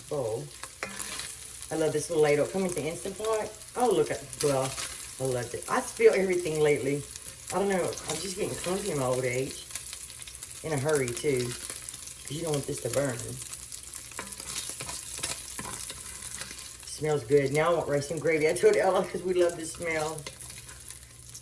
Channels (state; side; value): identical; both; correlation 1.00